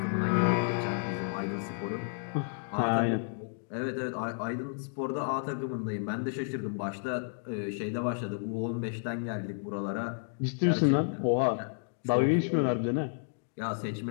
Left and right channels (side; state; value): right; silent; digital silence